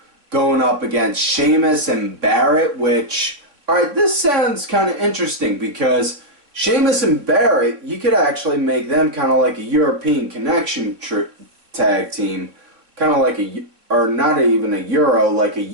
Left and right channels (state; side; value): late; left; 3.5 ms